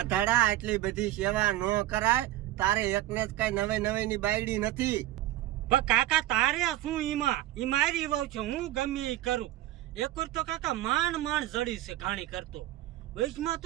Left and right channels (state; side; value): quieter; left; 15.2 dB